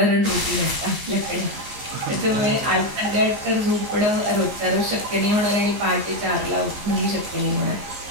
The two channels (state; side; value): late; left; 15 ms